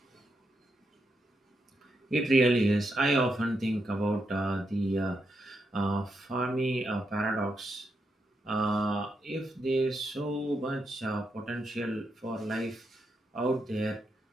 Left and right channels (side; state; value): both; normal; correlation 0.82